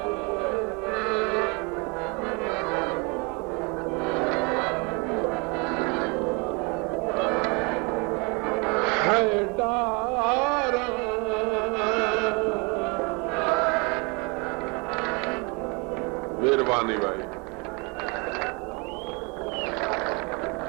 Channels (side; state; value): left; quieter; 30.5 dB